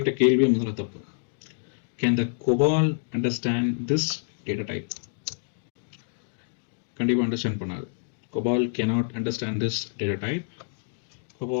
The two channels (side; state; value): right; silent; digital silence